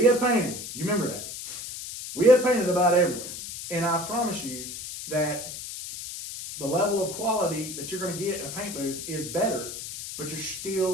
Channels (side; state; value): left; noise; hiss, 9 dB below the sound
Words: have painted, you remember that. We have painted about everywhere. And I promise you that the level of quality that you're going to get in a paint booth is better, but you're